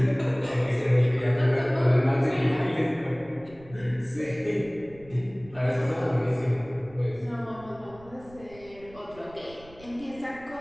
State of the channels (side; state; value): right; noise; rumble, 22 dB below the sound